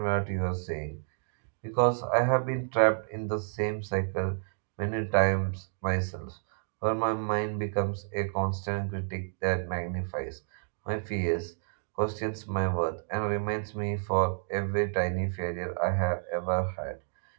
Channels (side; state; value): left; silent; digital silence